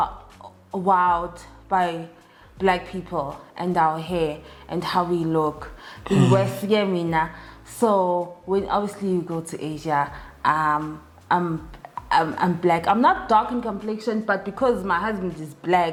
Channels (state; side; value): identical; both; correlation 1.00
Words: wowed by black people and our hair and how we look. In West Yemena. So when obviously you go to Asia, I'm black. I'm not dark in complexion, but because my husband is